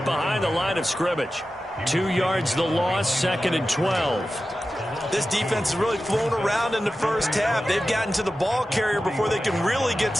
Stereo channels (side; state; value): both; normal; correlation 0.94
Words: behind the line of scrimmage. 2 yards the loss, 2nd and 12. This defense has really flown around in the first half. They've gotten to the ball carrier before they can really get